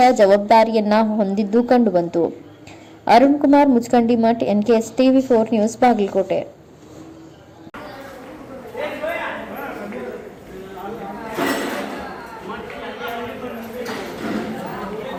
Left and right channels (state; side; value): identical; both; correlation 1.00